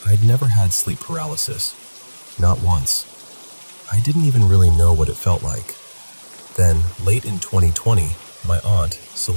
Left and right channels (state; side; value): inverted; both; correlation -1.00